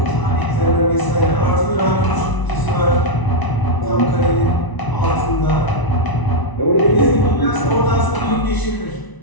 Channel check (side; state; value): right; late; 1.0 ms